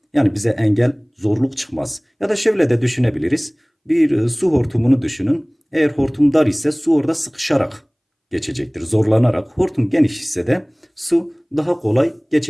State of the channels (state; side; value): identical; both; correlation 1.00